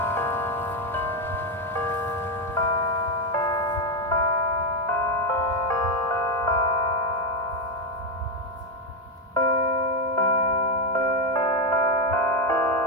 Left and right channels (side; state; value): both; normal; correlation 0.07